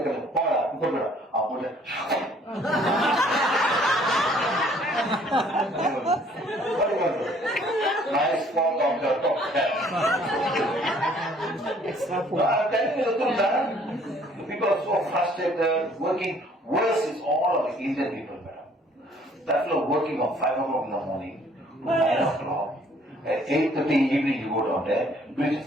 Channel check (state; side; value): normal; both; correlation 0.59